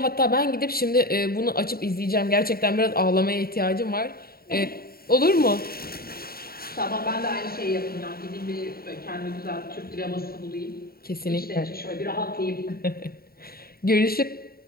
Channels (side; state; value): right; late; 0.44 ms